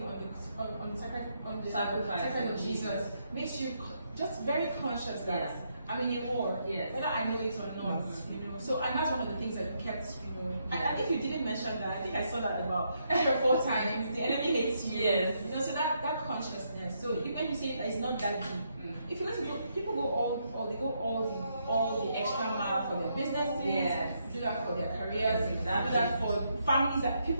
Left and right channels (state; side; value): inverted; both; correlation -0.77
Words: on the sacrifice of Jesus makes you just very conscious that I'm in a war, whether I know it or not. So, and that's one of the things that kept, and I think you didn't mention that. I think I saw that about 3 or 4 times. The enemy hates you. Yes. So that consciousness. So when you say that it's not that deep, if you listen to people go all the extra mile for their businesses, do that for their careers, do that for families, that